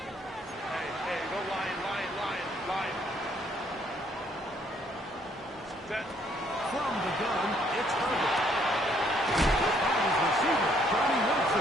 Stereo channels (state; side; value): normal; both; correlation 0.66